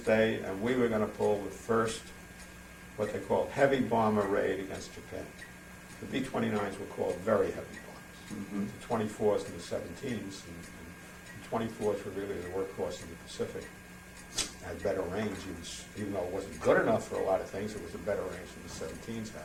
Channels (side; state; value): both; identical; correlation 1.00